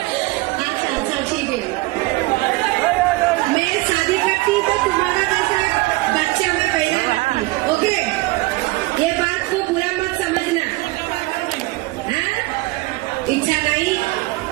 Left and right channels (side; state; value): left; quieter; 21.4 dB